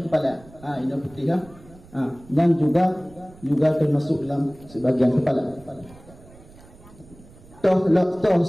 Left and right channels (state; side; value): noise; right; rumble, 23 dB below the sound